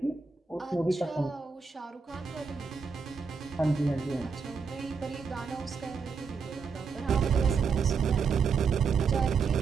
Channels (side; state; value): left; quieter; 5.4 dB